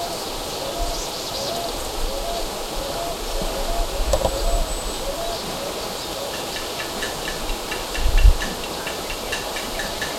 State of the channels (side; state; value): both; identical; correlation 1.00